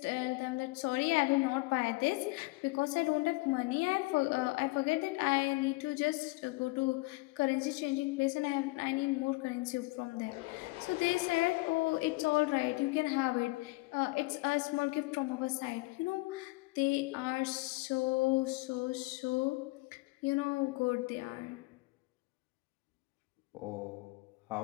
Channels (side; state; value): right; quieter; 23.8 dB